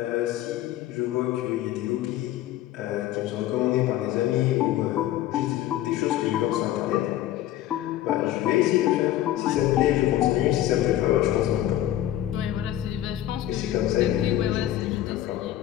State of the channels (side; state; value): right; quieter; 13.2 dB